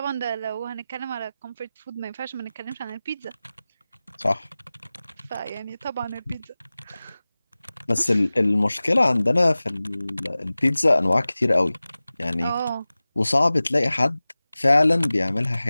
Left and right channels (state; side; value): inverted; both; correlation -0.97